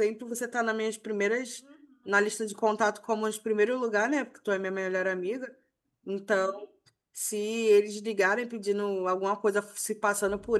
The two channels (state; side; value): identical; both; correlation 1.00